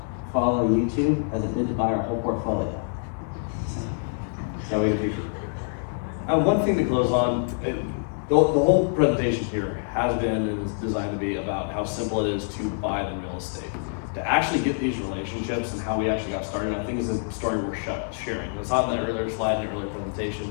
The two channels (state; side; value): silent; right; 59 dB below the other